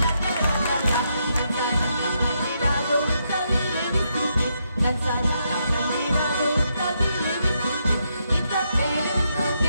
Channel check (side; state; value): both; inverted; correlation -0.79